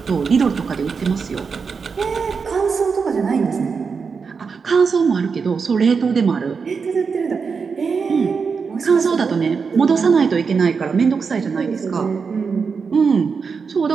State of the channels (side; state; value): left; quieter; 5.4 dB